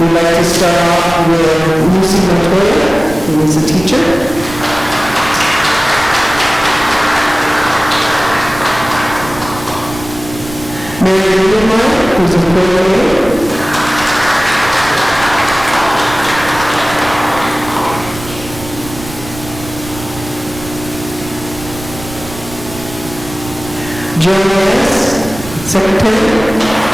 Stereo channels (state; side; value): noise; right; rumble, 14 dB below the sound